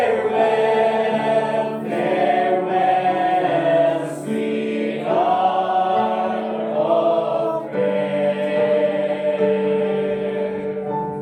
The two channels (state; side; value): identical; both; correlation 1.00